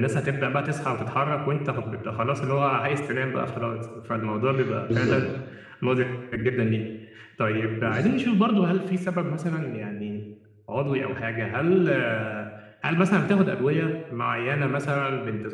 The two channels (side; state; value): both; identical; correlation 1.00